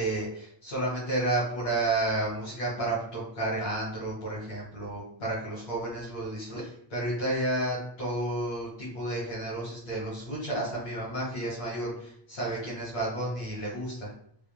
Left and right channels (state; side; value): late; right; 8.6 ms